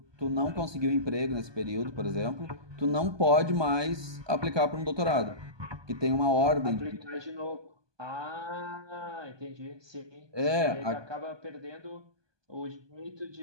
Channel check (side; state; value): left; late; 1.2 ms